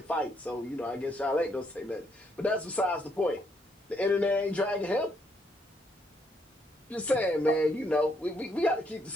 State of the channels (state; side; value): normal; both; correlation 0.73